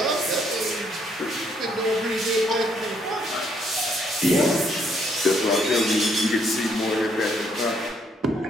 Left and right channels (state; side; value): normal; both; correlation 0.70